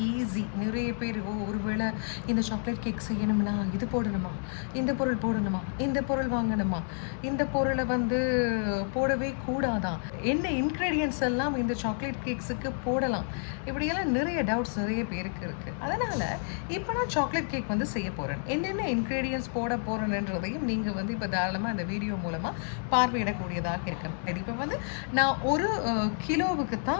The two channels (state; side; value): silent; right; 58 dB below the other